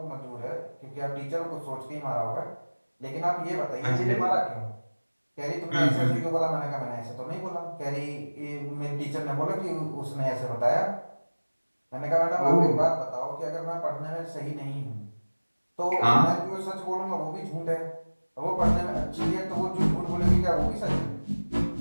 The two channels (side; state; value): both; inverted; correlation -1.00